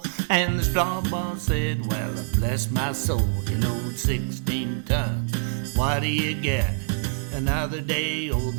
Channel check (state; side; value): silent; left; digital silence